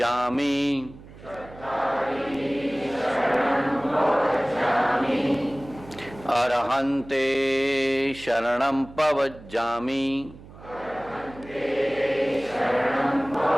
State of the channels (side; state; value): right; noise; hum, 19 dB below the sound